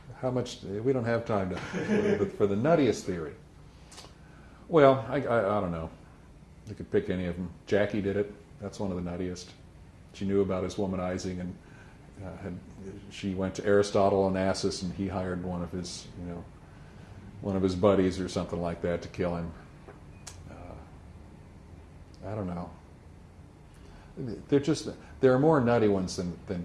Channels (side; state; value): both; identical; correlation 1.00